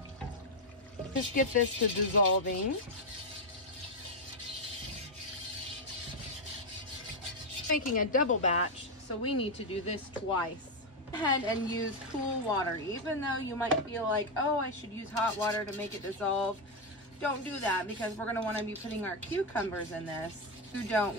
Just get this to dissolving. Making a double batch, so we need to do this twice. Go ahead and use cool water. Even though you might feel like, oh, I should use hot water to make it dissolve, don't do that, because we're going to want to be putting our cucumbers in this. You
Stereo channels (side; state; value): both; normal; correlation 0.05